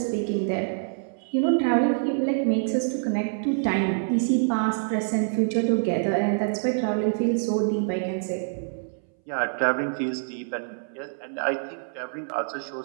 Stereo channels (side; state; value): left; silent; 61 dB below the other